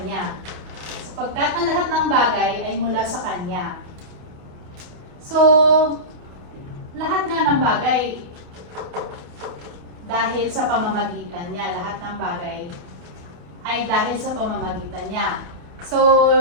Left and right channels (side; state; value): left; late; 28 ms